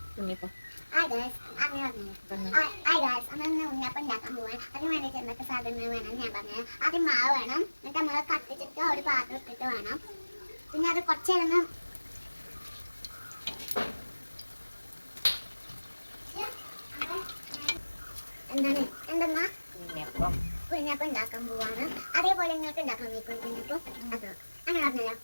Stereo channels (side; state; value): both; inverted; correlation -1.00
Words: ഉണ്ണിയപ്പം ഉണ്ടാക്കാൻ പോവാൻ അതിന് വേണ്ടിയിട്ട് എന്തൊക്കെ സാധനങ്ങൾ വേണം ഞാൻ പറഞ്ഞത്. ആദ്യം മാവ് വേണം, എന്നിട്ട് നമ്മൾ കത്തിച്ചിട്ട് ഒരു പാത്രം ഇട്ടിട്ട് വേണം. പിന്നെ അത് കുറച്ച് നേരം എന്തെന്നാ കുഞ്ഞപ്പം ഉണ്ടാക്കാൻ പോവാണ്. അതേപോലെ നിങ്ങൾക്ക് ഉണ്ടാക്കാൻ വയ്ക്കും കുഞ്ഞപ്പം. അത് അങ്ങനെ പറഞ്ഞല്ലോ.